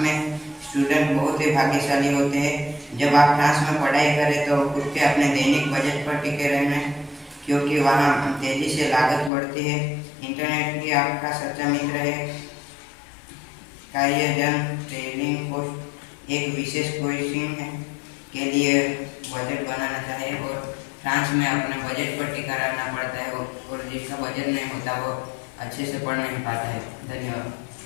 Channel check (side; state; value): right; drops out; at 9.3 s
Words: स्टूडेंट बहुत ही भाग्यशाली होते हैं। जब आप फ्रांस में पढ़ाई करें तो खुद के अपने दैनिक बजट पर टिके रहना, क्योंकि वहाँ तेजी से लागत बढ़ती है। इंटरनेट भी आपका सच्चा मित्र है। कार्यजन ट्रेनिंग पोस्ट एक विशेष कोचिंग के लिए बजट बनाना चाहिए और फ्रांस में अपने बजट पर टिका रहना पड़ता है और जिसका बजट नहीं होता वो अच्छे से पढ़ नहीं पाता है। धन्यवाद।